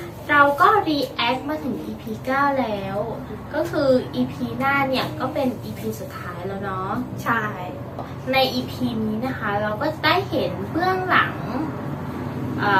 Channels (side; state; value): both; identical; correlation 1.00